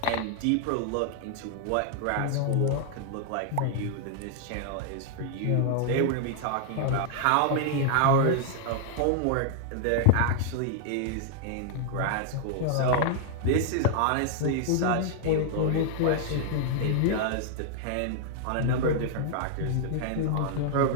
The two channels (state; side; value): different; both; correlation 0.00